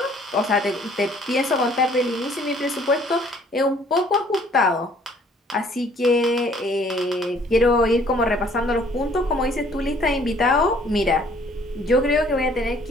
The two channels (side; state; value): both; normal; correlation 0.59